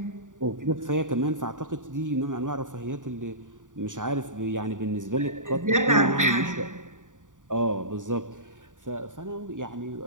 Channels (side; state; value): left; late; 0.87 ms